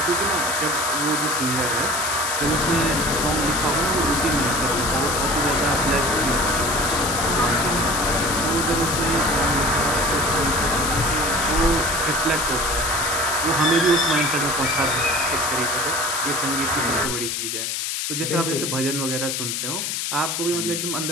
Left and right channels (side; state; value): left; noise; hiss, 2 dB below the sound